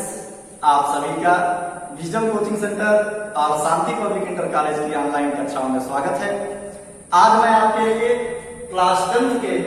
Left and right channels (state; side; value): identical; both; correlation 1.00